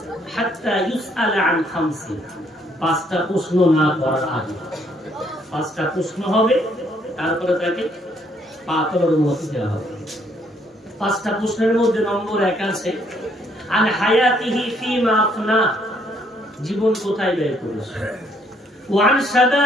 হাত্তা ইউসআলা আন খামসি, 5টা প্রশ্ন না করার আগে। 5টা প্রশ্ন হবে, তারপরে তাকে পা তোলার অনুমতি দেওয়া হবে। 5টা প্রশ্নের মধ্যে নম্বর 1 আছে, আন হায়াতিহি ফিমা আফনা, জীবন কোথায় ব্যয় করেছে, ওয়া আন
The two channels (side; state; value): both; normal; correlation 0.68